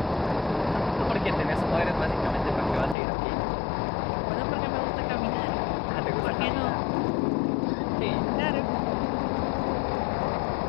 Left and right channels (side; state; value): right; drops out; at 3.0 s